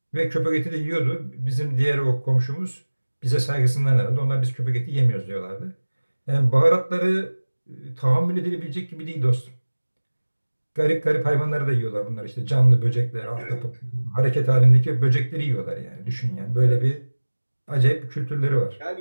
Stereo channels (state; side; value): inverted; both; correlation -1.00